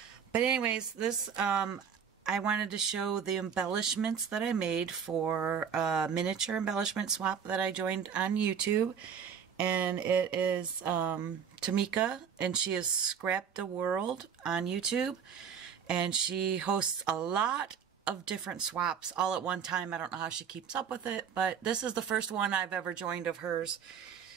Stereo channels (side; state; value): left; quieter; 7.4 dB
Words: But anyways, this, I wanted to show the embellishments that I made for a miniature embellishment swap that I joined on YouTube. And it is Tmika, and she is Scrapdaworld on YouTube. And she hosts a lot of different swaps all at one time. I don't know how she keeps up with it, but this is the first one I've ever joined of hers.